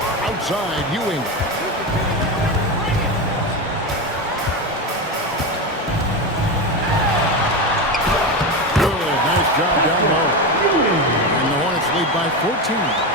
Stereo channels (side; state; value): both; normal; correlation 0.17